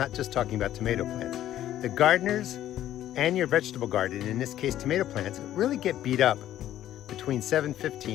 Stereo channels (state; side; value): quieter; right; 12.5 dB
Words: just talking about tomato plants. The gardeners and your vegetable garden, in this case tomato plants, really get beat up between